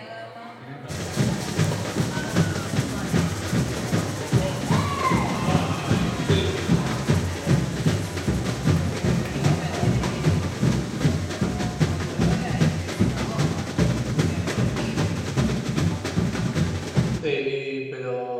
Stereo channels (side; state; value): both; identical; correlation 1.00